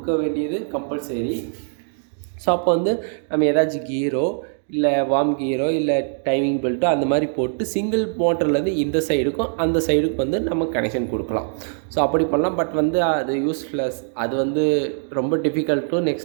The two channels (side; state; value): left; silent; digital silence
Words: வேண்டியது கம்பல்சரி. ஸோ அப்போ வந்து நம்ம ஏதாச்சும் கீரோ இல்லை வார்ம் கீரோ இல்லை டைமிங் பெல்ட்டோ அந்த மாதிரி போட்டு சிங்கிள் மோட்டர்லேருந்து இந்த சைடுக்கும் அந்த சைடுக்கும் வந்து நம்ம கனெக்ஷன் கொடுக்கலாம். ஸோ அப்படி பண்ணலாம். பட் வந்து அது யூஸ்லெஸ், அது வந்து ரொம்ப டிஃபிகல்ட்டும்,